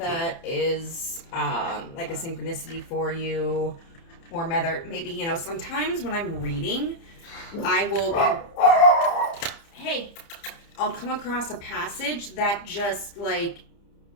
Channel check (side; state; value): right; late; 30 ms